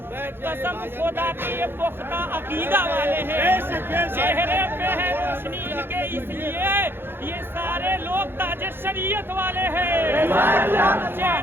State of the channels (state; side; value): late; left; 0.10 ms